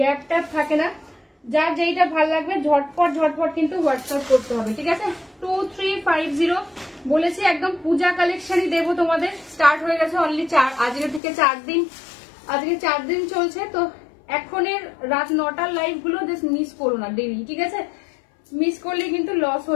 গ্যাপ ট্যাপ থাকে না, যার যেইটা ভালো লাগবে ঝটপট ঝটপট কিন্তু হোয়াটসঅ্যাপ করতে হবে, ঠিক আছে? 2350 বলেছি, একদম পূজা কালেকশনই দেবো তোমাদের। স্টার্ট হয়ে গেছে অনলি আজকে থেকে 4 দিন, আজকে 4 দিন চলছে। তো এখনের রাত 9টার লাইভ গুলো জাস্ট মিস করো না ডেলি, ঠিক আছে? মিস করলে কিন্তু লস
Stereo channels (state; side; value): drops out; right; at 11.2 s